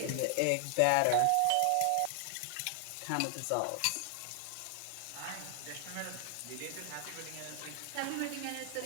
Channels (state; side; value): different; both; correlation 0.00